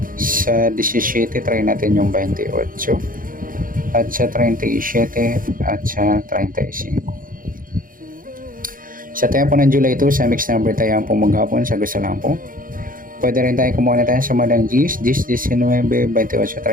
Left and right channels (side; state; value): left; late; 0.40 ms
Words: Sa 17 try natin yung 28, at sa 37 at sa 35. Sa tayo po ng July 2 sa mix number tayo po maghapon sa gusto lang po. Pwede rin tayo kumuha na tayo sumadang 10, 19, 28,